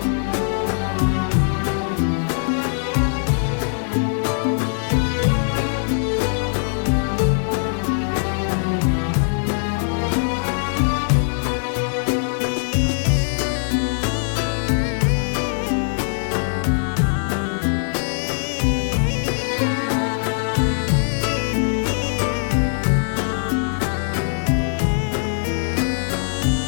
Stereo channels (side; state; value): right; silent; digital silence